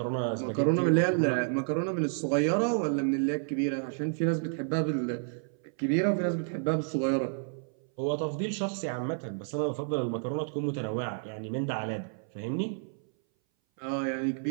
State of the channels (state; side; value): silent; left; 58 dB below the other